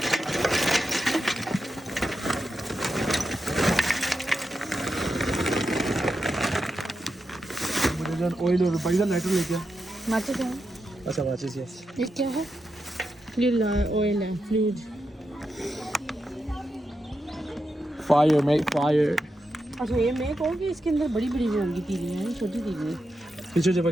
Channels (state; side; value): normal; both; correlation 0.87